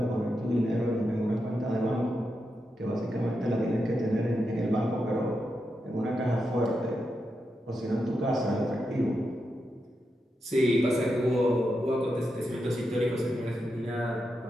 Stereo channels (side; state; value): both; normal; correlation 0.86